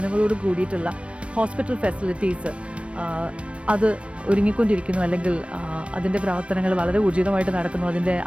കൂടിയിട്ടുള്ള ഹോസ്പിറ്റൽ ഫെസിലിറ്റീസ് അത് ഒരുങ്ങിക്കൊണ്ടിരിക്കുന്നു, അല്ലെങ്കിൽ അതിൻ്റെ പ്രവർത്തനങ്ങൾ വളരെ ഊർജിതമായിട്ട് നടക്കുന്നു. അതിൻ്റെ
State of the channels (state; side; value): late; left; 0.061 ms